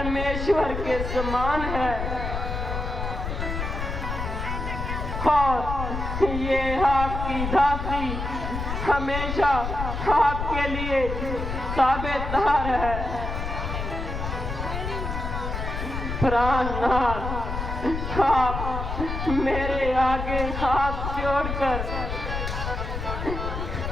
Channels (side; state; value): left; noise; rumble, 4 dB below the sound